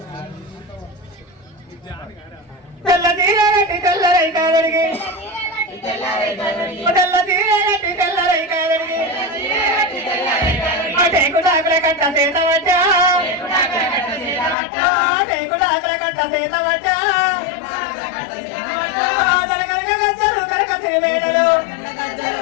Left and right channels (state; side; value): drops out; right; at 14.6 s